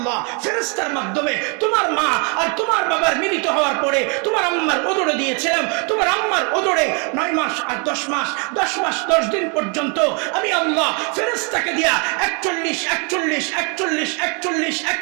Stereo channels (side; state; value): left; quieter; 35.0 dB